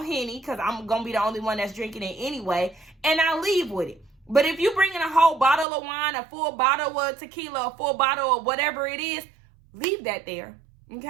because I'm going to be the only one that's drinking it anyway. And I leave with it. But if you bring in a whole bottle of wine, a full bottle of tequila, a full bottle of whatever it is, leave that there.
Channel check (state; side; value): drops out; left; at 5.7 s